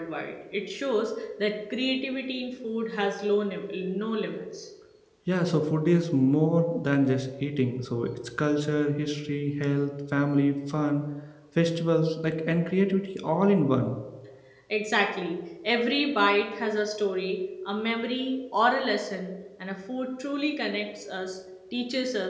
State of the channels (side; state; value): both; identical; correlation 1.00